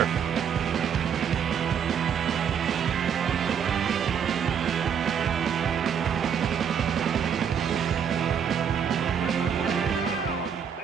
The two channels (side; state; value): left; quieter; 7.7 dB